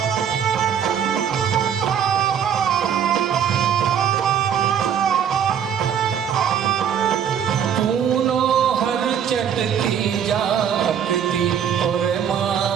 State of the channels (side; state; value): left; quieter; 8.4 dB